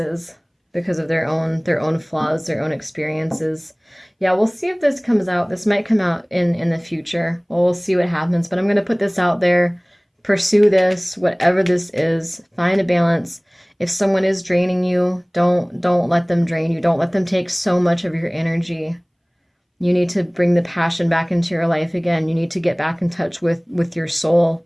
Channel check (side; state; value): both; identical; correlation 1.00